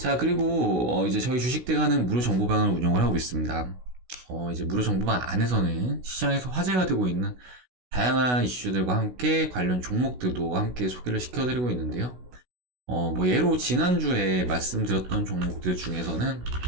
그리고 이제 저희 주식대가는 무료 정보방을 운영을 하고 있습니다. 이제 무료 정보방 안에서는 시장에서 화제가 되고 있는 다양한 이슈들과 함께 관련 종목들도 함께 소개를 시켜드리고 있는데요. 뭐 예로 지난주에 말씀드렸던 종목들 중에서는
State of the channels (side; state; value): left; late; 16 ms